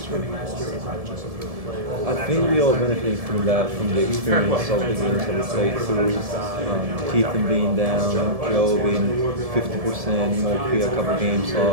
you? I think we all benefited from that, from the experience of the games that we played through. Keithan being down, Joe being 50%, Moki a couple games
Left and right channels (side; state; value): left; late; 1.7 ms